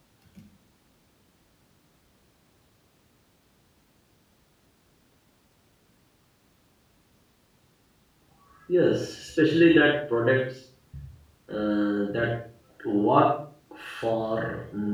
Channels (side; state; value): both; identical; correlation 1.00